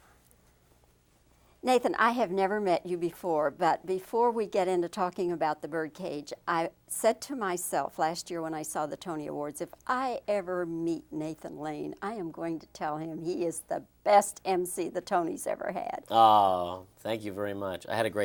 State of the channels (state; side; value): identical; both; correlation 1.00